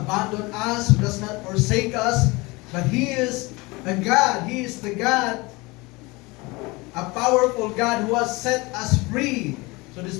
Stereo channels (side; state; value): right; quieter; 24.0 dB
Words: us, who does not forsake us, but He is a God. He is the God, a powerful God who has set us free. So